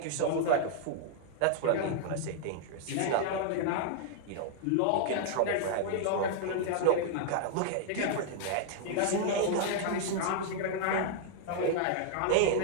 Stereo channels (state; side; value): different; both; correlation -0.01